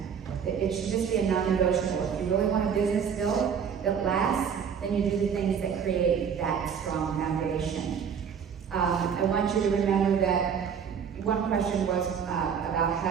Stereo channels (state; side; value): quieter; left; 7.2 dB